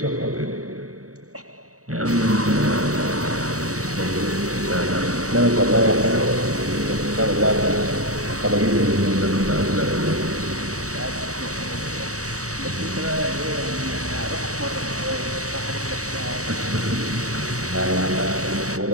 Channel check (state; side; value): late; left; 0.66 ms